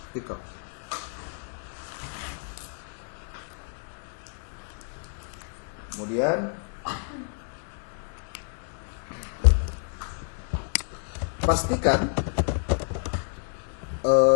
artikel. Kemudian pastikan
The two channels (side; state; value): right; silent; digital silence